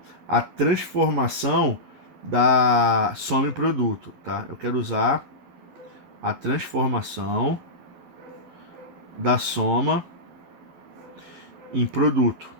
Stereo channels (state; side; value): late; left; 11 ms